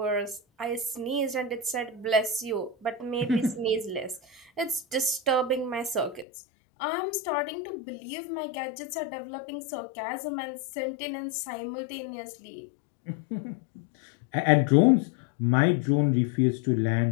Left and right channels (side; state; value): right; drops out; at 6.2 s